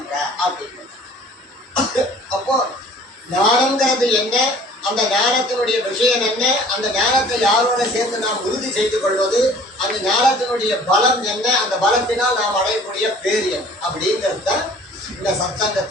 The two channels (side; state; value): both; normal; correlation 0.50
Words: அப்படின்னு. அப்போ ஞானம்ங்கிறது என்ன, அந்த ஞானத்தினுடைய விஷயம் என்ன, அந்த ஞானத்தை யாரோட சேர்ந்து நாம் உறுதி செய்து கொள்வது, அந்த ஞானத்தினுடைய பலம் என்ன, அந்த பலத்தினால் நாம் அடையக்கூடிய பேர் என்ன அப்படிங்கிறது தான் இந்த